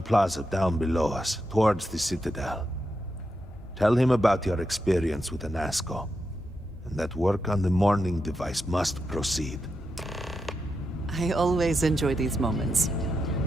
Plaza down below us, towards the Citadel. Tell him about your experience with Anasco, and that work on the morning device must proceed. I always enjoy these moments.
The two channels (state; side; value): normal; both; correlation 0.86